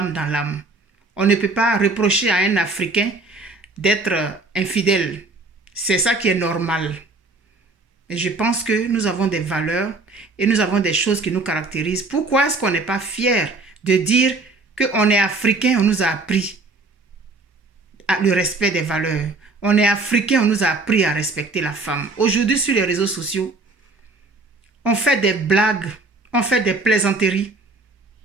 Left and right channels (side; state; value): left; quieter; 3.4 dB